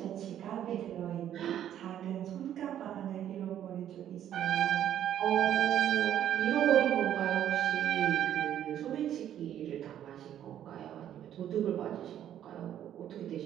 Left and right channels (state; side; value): quieter; left; 10.7 dB